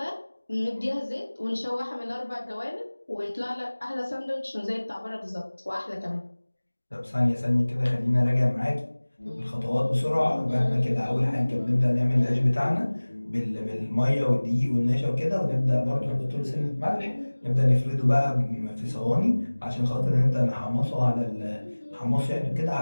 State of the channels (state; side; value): inverted; both; correlation -1.00